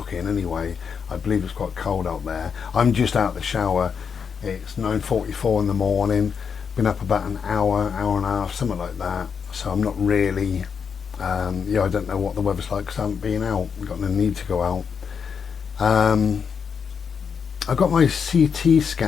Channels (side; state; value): right; quieter; 6.5 dB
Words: anyway. I believe it's quite cold out there. I'm just out of the shower. It's 9:44 in the morning. Been up about an hour and a half, something like that. So I'm not really, I don't know what the weather's like because I haven't been out. I've got no need to go out. I got my CT